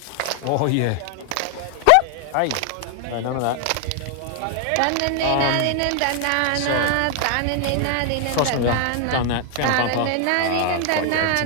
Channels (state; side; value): different; both; correlation 0.00